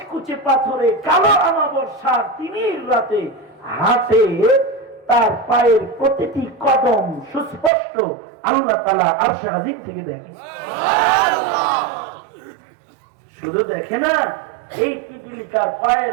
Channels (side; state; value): left; drops out; at 7.7 s